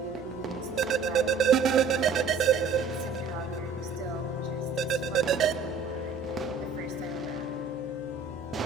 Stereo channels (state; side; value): quieter; left; 5.1 dB